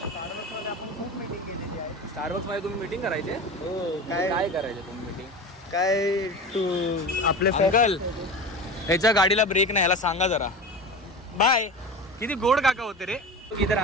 आपण खूप मीटिंग केलेली आहे. स्टारबक्समध्ये तुम्ही मीटिंग करायचे? हो. काय करायचे तुम्ही मीटिंग? काय तू आपले अंकल ह्याच्या गाडीला ब्रेक नाही ह्याला सांगा जरा. बाय. किती गोड काका होते रे. इधर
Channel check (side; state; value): both; normal; correlation 0.30